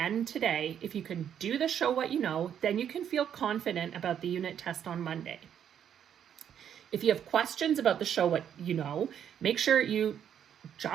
today, if you can do the Show What You Know, then you can feel confident about the unit test on Monday. If you have questions about the Show What You Know, make sure you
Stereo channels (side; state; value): left; quieter; 9.1 dB